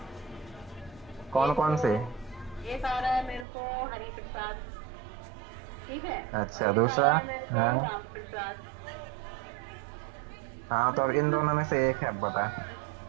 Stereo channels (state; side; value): drops out; left; at 3.5 s